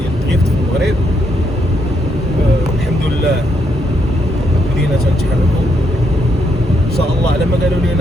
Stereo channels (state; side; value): normal; both; correlation 0.77